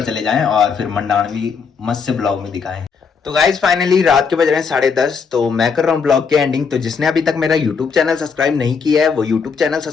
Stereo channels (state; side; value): quieter; right; 5.7 dB